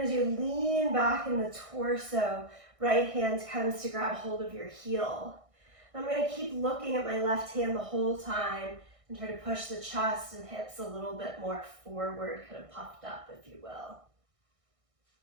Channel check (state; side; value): late; left; 1.6 ms